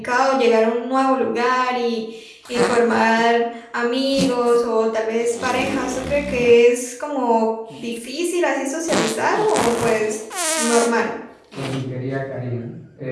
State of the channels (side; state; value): both; identical; correlation 1.00